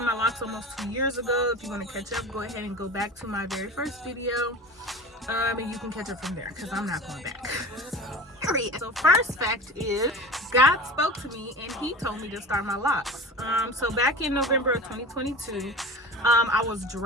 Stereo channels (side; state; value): both; normal; correlation 0.34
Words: my locks almost 2 years ago. If you want to catch up, go ahead and go back to my very first video. And you can catch up from there, because I'm not going back. So first fact is, God spoke to me and he told me to start my locks. So back in November of 2022, I was